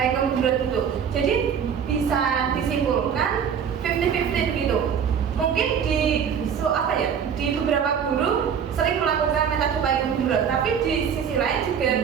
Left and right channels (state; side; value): quieter; left; 7.6 dB